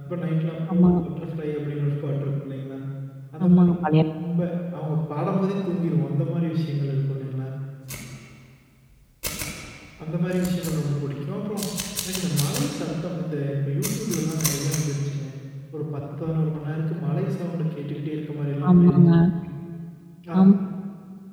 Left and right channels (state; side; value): identical; both; correlation 1.00